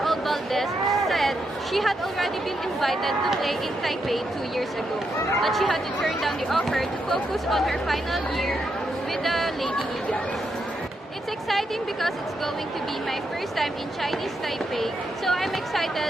Valdez said she had already been invited to play in Taipei 2 years ago, but she had to turn down the offer to focus on her final year with the Lady Eagles. It's exciting because it's going to be my first time in Chinese Taipei, so I'm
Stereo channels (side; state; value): both; normal; correlation 0.81